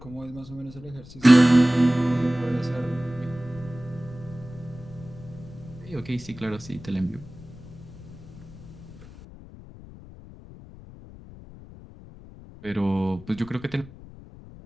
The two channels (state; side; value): noise; left; rumble, 17 dB below the sound